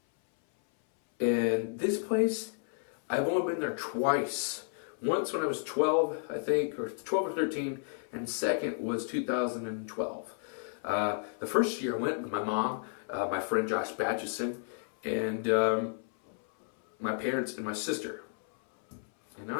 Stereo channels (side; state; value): right; silent; 56 dB below the other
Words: And this place, I've only been there twice. Once when I was 12, I think, or 12 or 13, and second was 2012. The first year I went with my mom, my friend Josh Batchison, and my parents and my sister. And now